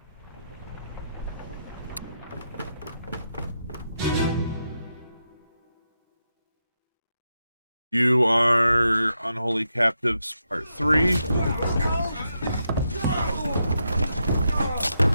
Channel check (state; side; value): inverted; both; correlation -0.84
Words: You are Unholy Captives Part 3.